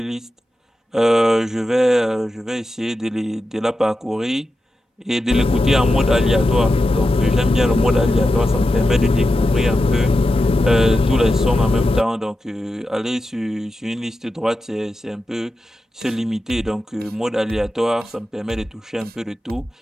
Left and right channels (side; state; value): both; normal; correlation 0.91